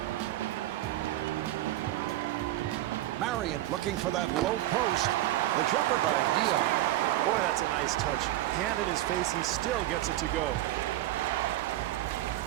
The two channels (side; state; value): left; quieter; 15.0 dB